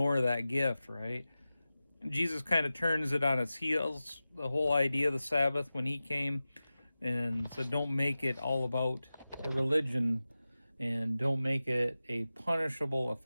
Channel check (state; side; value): inverted; both; correlation -0.95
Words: that gift, right? Jesus kind of turns it on its heels, the whole idea of the Sabbath, when he came and said, don't make it all about a religion and don't make it a punishable